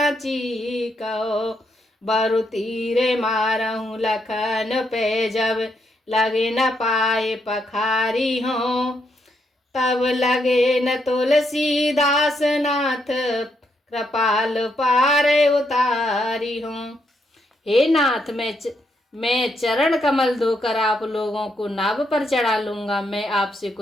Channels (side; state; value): both; normal; correlation 0.77